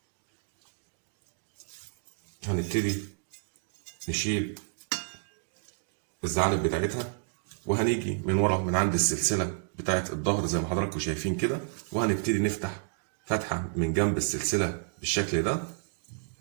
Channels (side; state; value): left; silent; digital silence